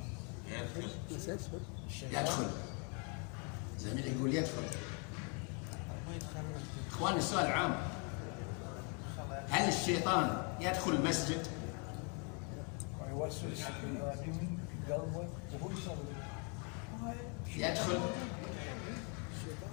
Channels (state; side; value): quieter; right; 34.7 dB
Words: يدخل. زميلي يقول يدخل. اخواني السؤال عام، هل الشيطان يدخل المسجد؟ ويوسوس في قلبه وهو يصلي. يدخل.